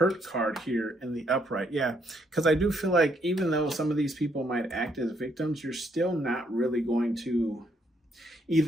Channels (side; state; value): both; normal; correlation 0.72